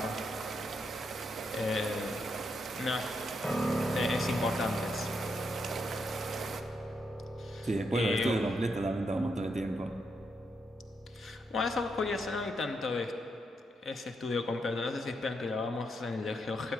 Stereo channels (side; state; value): both; normal; correlation 0.81